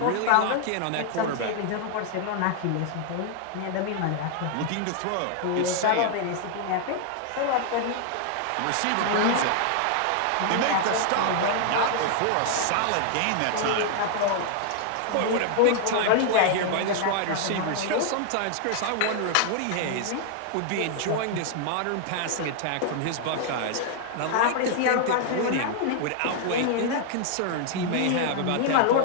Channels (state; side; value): different; both; correlation 0.00